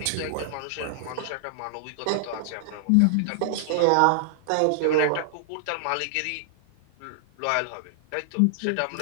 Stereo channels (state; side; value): different; both; correlation -0.01